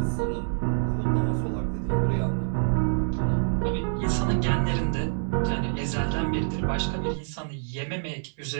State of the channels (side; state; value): left; silent; 60 dB below the other